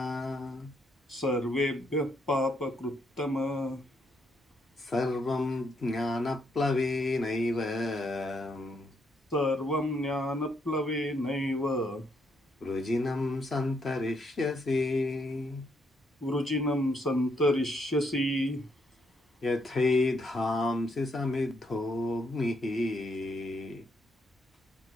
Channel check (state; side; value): normal; both; correlation 0.75